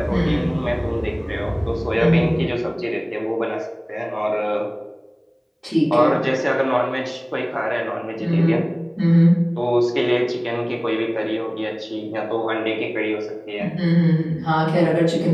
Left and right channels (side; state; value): both; identical; correlation 1.00